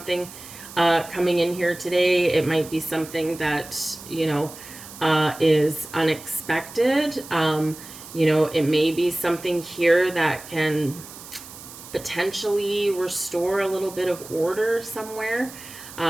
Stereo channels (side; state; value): right; noise; hiss, 16 dB below the sound